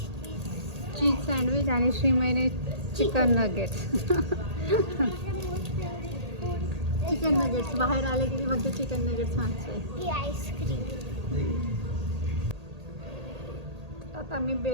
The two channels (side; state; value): left; late; 1.8 ms